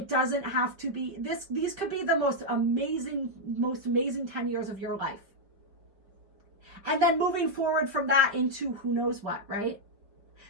doesn't have to be this. These could be the most amazing 10 years of your life. And then moving forward from that into who knows what, right?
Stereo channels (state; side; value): late; left; 4.9 ms